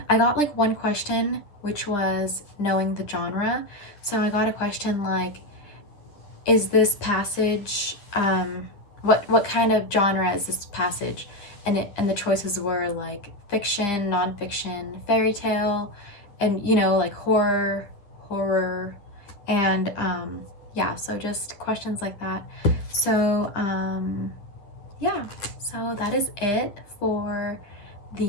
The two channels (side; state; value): right; late; 9.9 ms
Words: got like one question which was knowing the genre. So I got a question like, is this passage, what kind of genre is this passage? And the choices were like fiction, nonfiction, fairy tale, and like horror, and yeah, so just questions like that. So yeah, so that is it for